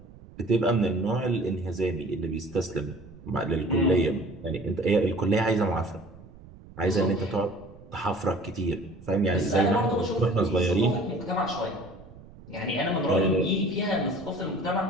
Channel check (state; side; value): noise; right; rumble, 20 dB below the sound